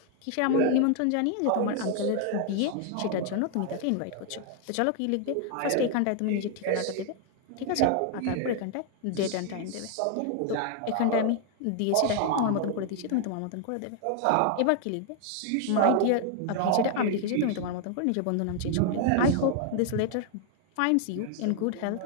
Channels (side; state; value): both; different; correlation 0.00